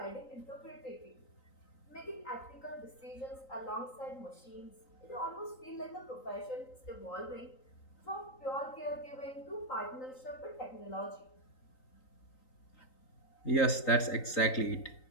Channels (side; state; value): right; late; 3.9 ms